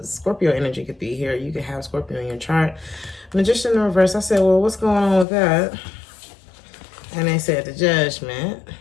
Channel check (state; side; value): drops out; right; at 5.2 s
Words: Scorpio energy could be here. You could have Scorpio in your chart. Magician in the reverse, I said, well, what's going on with that? And they said the judgment.